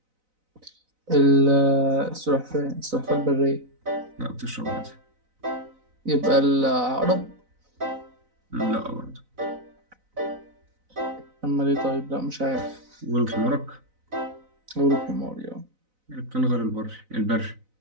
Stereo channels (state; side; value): late; left; 4.0 ms